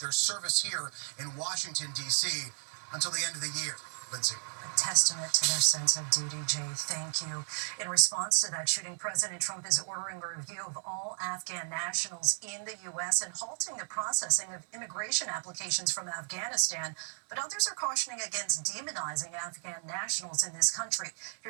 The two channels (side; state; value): left; silent; 55 dB below the other